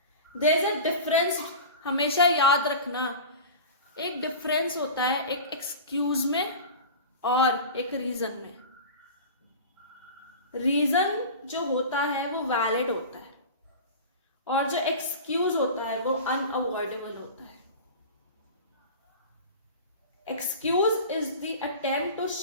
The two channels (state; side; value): inverted; both; correlation -0.33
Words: देयर इज अ डिफरेंस, हमेशा याद रखना, एक डिफरेंस होता है एक एक्सक्यूज में और एक रीजन में। रीजन जो होता है वो वैलिड होता है और जो एक्सक्यूज होता है वो अनअवॉइडेबल होता है। Excuse is the attempt to